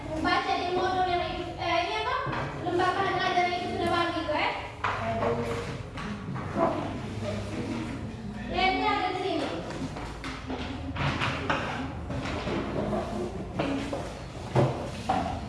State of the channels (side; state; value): both; identical; correlation 1.00